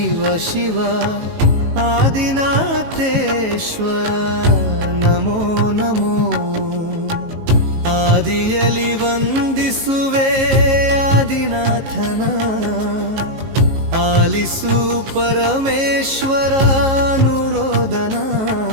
ಶಿವ ಆದಿನಾಥೇಶ್ವರ ನಮೋ ನಮೋ ಆದಿಯಲಿ ವಂದಿಸುವೆ ಆದಿನಾಥನ ಆಲಿಸು ಪರಮೇಶ್ವರ ಅನುರೋದನ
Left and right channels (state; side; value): late; left; 18 ms